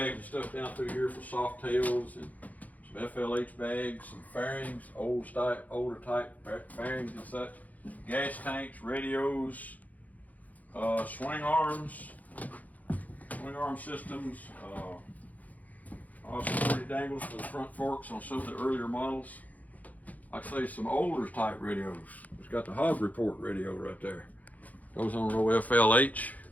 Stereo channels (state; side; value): late; right; 0.077 ms